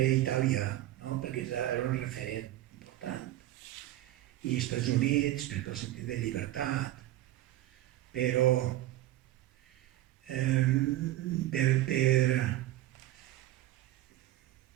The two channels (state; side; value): quieter; left; 14.8 dB